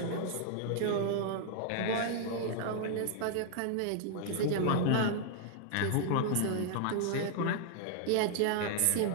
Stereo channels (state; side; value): different; both; correlation 0.00